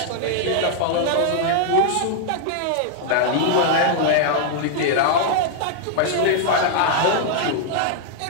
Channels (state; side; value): different; both; correlation -0.01